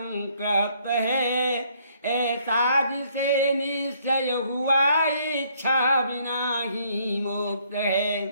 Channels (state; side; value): inverted; both; correlation -0.66